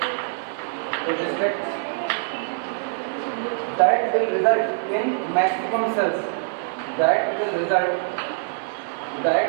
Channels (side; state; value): left; silent; 59 dB below the other